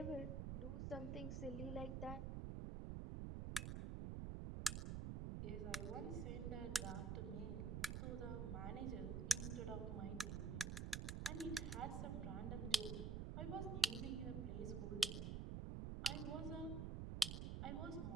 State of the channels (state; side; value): noise; right; rumble, 1 dB below the sound